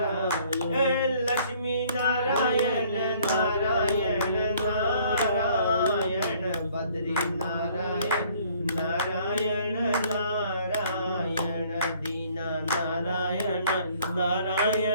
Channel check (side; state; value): both; inverted; correlation -0.59